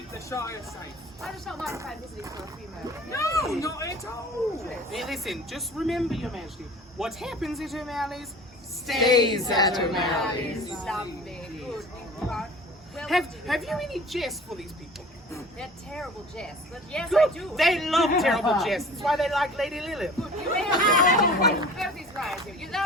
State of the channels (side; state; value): both; normal; correlation 0.42